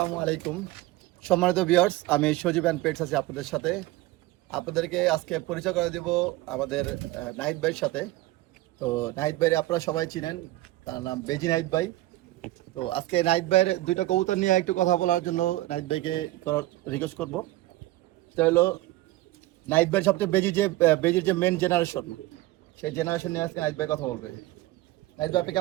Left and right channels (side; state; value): left; quieter; 17.4 dB